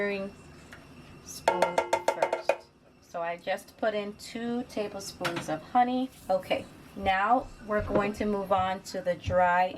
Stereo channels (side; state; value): both; identical; correlation 1.00